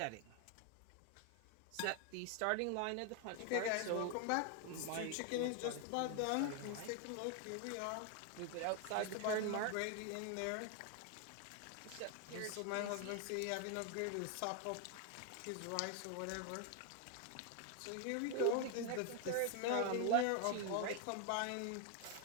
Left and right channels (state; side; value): different; both; correlation 0.00